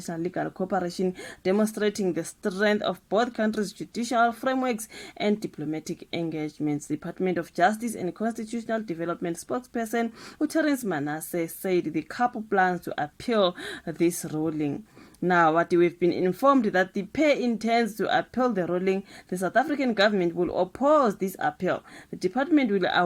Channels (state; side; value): identical; both; correlation 1.00